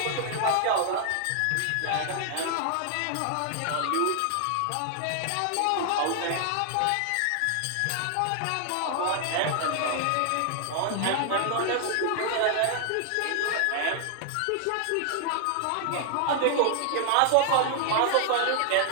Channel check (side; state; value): both; different; correlation 0.00